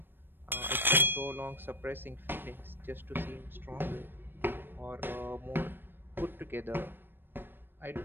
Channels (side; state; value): left; late; 0.097 ms